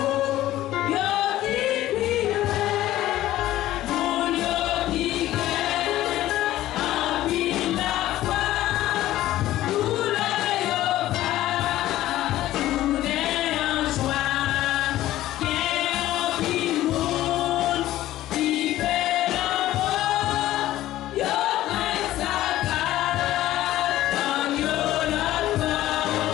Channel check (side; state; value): right; quieter; 14.6 dB